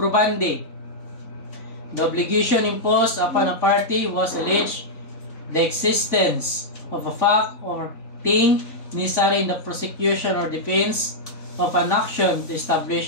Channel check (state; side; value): late; right; 3.5 ms